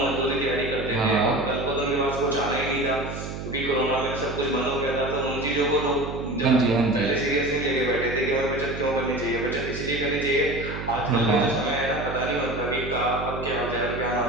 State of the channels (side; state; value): right; noise; hum, 7 dB below the sound